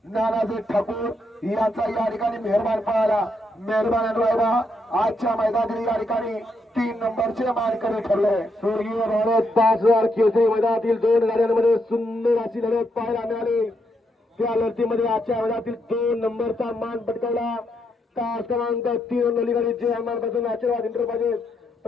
नानासेठ ठाकूर यांचा या ठिकाणी मेहरबान पाहिला. मेहरबान रायबा आजच्या मैदानातील या ठिकाणी 3 नंबरचे मानकरी ठरले. स्वर्गीय भारत 5000 केसरी मैदानातील 2 गाड्यांमध्ये सुंदर अशी लढत पाहायला मिळाली. त्या लढतीमध्ये आजच्या मैदानातील 2 नंबरचा मान पटकावला. तास क्रमांक 3 नवली गाडी जे हनुमानपासून आशीर्वाद इंटरप्राइजेस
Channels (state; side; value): normal; both; correlation 0.79